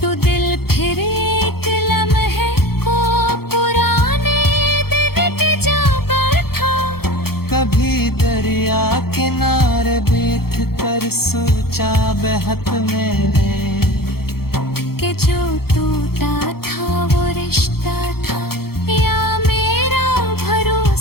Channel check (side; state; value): right; late; 0.95 ms